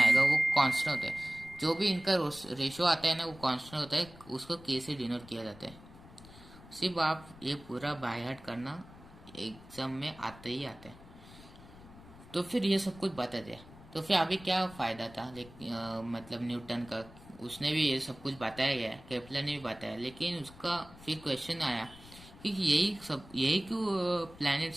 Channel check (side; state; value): left; noise; rumble, 20 dB below the sound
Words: वो कांस्टेंट होता है। जो भी इनका रेशियो आता है ना वो कांस्टेंट होता है, उसको के से डिनोट किया जाता है। सिर्फ आप ये पूरा बाय हार्ट करना, एग्जाम में आते ही आते हैं। तो फिर ये सब कुछ बता दिया, तो फिर अभी क्या फ़ायदा था मतलब न्यूटन का, उसने भी ये सब कुछ बताया गया, केपलर ने भी बताया, लेकिन उसका फिर क्वेश्चन आया कि यही क्यों